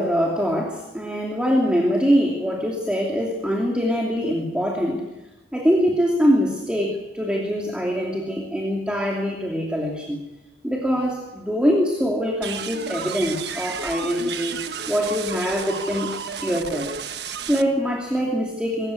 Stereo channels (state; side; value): normal; both; correlation 0.78